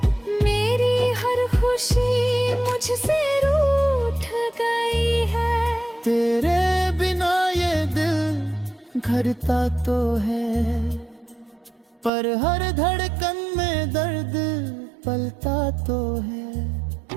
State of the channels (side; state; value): left; drops out; at 12.1 s